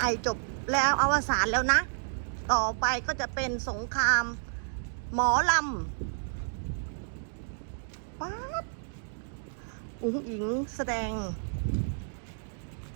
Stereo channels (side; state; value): left; silent; digital silence